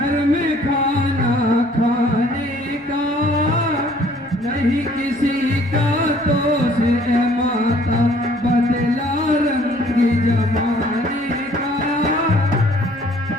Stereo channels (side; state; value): both; normal; correlation 0.58